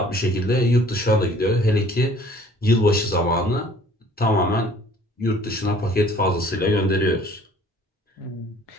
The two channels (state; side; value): normal; both; correlation 0.54